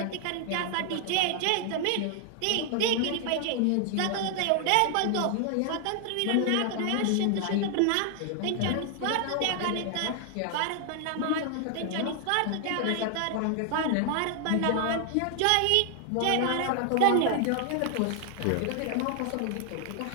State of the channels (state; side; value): different; both; correlation 0.00